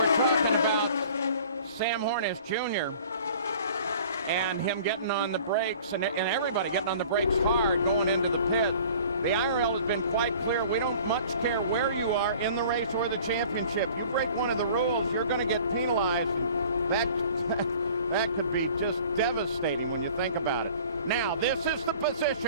talking about Sam Hornish Jr. and him getting on the brakes, and everybody getting on the brakes hard going into the pit. The IRL has been quite clear. We don't much care where you are in the race or the championship. You break one of the rules, you're going to get penalized. That could be just devastating when you think about it. Now, this is the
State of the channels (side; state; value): both; inverted; correlation -0.48